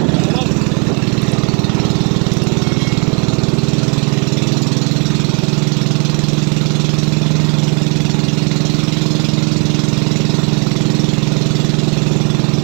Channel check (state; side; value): quieter; left; 34.9 dB